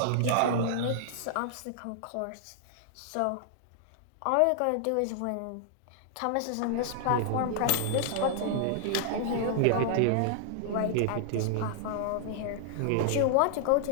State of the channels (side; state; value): both; different; correlation -0.01